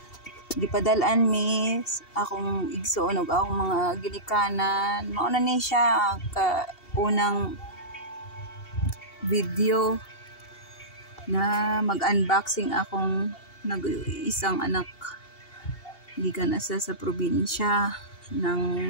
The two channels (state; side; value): late; right; 2.7 ms